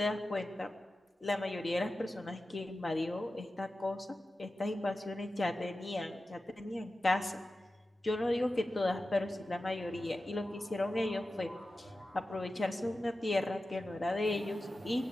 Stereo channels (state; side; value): normal; both; correlation 0.94